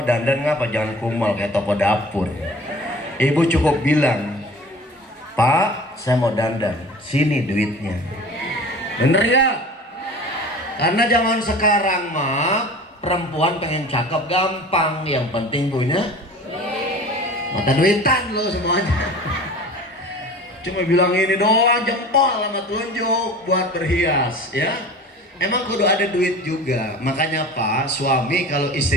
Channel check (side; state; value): both; normal; correlation 0.40